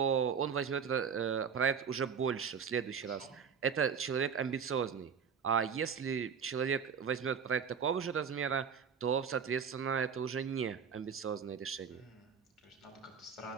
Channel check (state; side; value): quieter; left; 6.7 dB